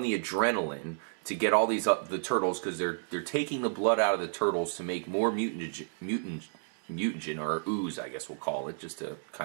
the adrenaline to get all these the Turtles, because they're taking the blood out of the Turtles to make more mutagen, or ooze, I guess we'll call it, just to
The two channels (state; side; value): silent; left; digital silence